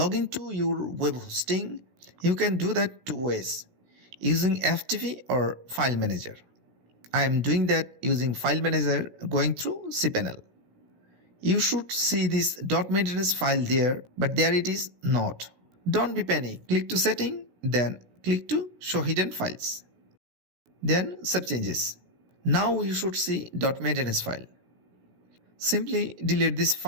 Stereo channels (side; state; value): left; late; 16 ms